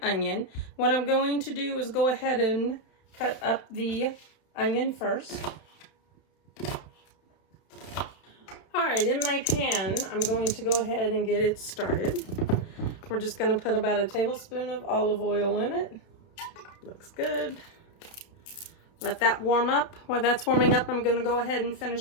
onion. What I'm going to do is go ahead and cut up the onion first. All right, in my pan, I'm going to go ahead and get it started. We're just going to put about a tablespoon of olive oil in it. Looks good. Let that warm up. While that's warming up, I'm going to go ahead and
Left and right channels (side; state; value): right; late; 31 ms